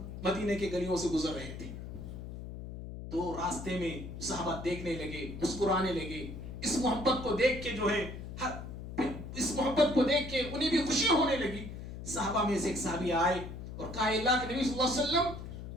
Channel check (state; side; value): noise; left; hum, 9 dB below the sound